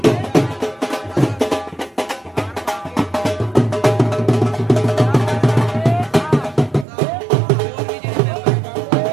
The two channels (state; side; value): drops out; left; at 6.9 s